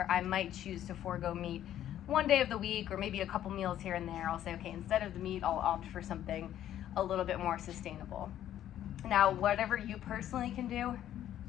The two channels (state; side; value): quieter; right; 11.6 dB